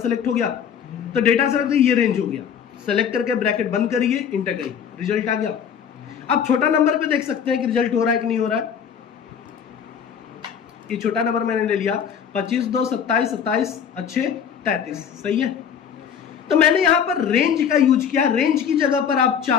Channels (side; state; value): right; quieter; 7.8 dB